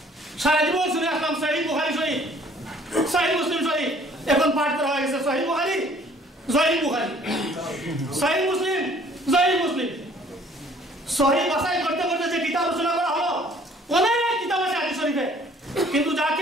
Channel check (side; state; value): both; normal; correlation 0.57